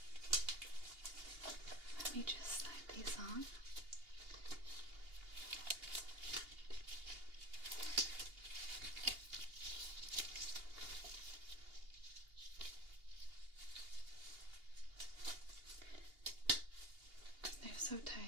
Let me just slide these on. They're so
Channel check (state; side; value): late; left; 2.8 ms